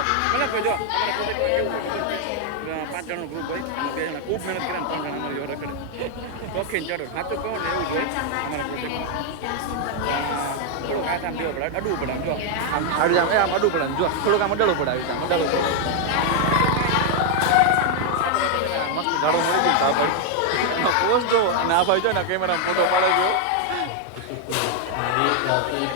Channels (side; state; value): both; different; correlation 0.00